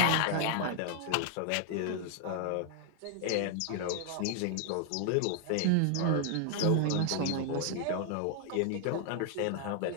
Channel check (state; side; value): different; both; correlation 0.00